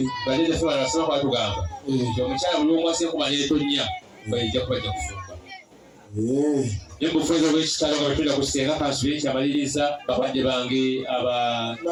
bajjajjaffe bano basaba kwatugamba omukyala buli omwasi enkuba n'etonya baijja kubajja kufumba nembufuezo bwekitalo nga betulira kusenga kansula ekyamaliriza bakadde bange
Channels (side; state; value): both; identical; correlation 1.00